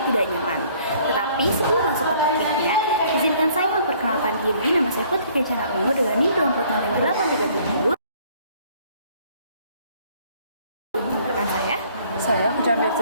tidak nyaman. Tetapi sebelum masuk ke topiknya, izinkan saya memperkenalkan diri. Nama saya Putri Kencana Ungu dengan NIM 240837. Rekan Saya Kujambe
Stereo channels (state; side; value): inverted; both; correlation -0.59